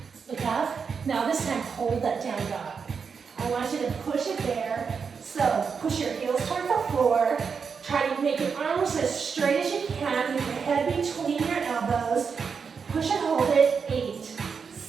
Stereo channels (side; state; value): left; quieter; 5.9 dB